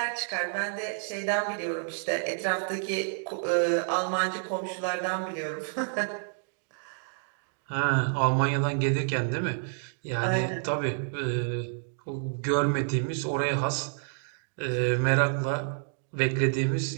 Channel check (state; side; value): silent; left; digital silence